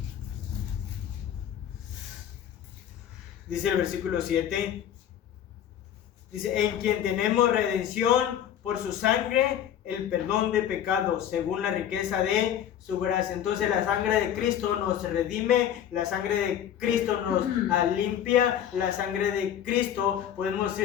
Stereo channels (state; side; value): quieter; right; 10.1 dB